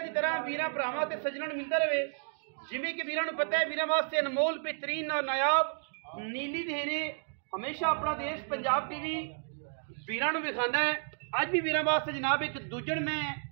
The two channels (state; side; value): silent; left; digital silence